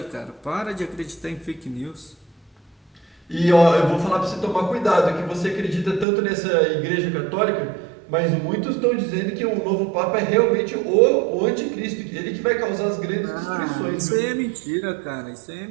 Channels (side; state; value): left; drops out; at 6.1 s